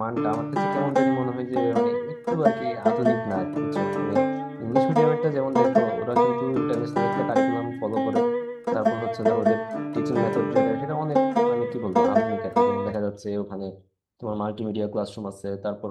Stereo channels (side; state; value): both; identical; correlation 1.00